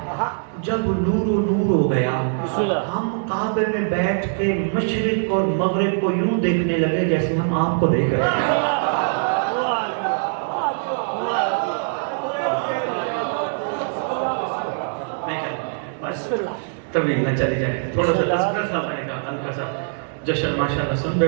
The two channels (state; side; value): silent; left; digital silence